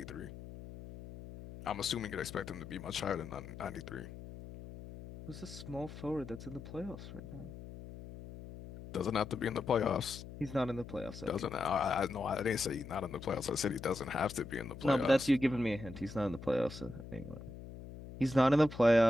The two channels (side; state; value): left; noise; hum, 13 dB below the sound